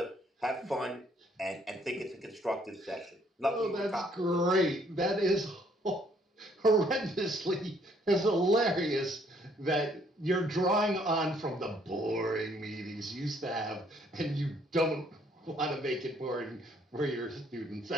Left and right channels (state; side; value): normal; both; correlation 0.65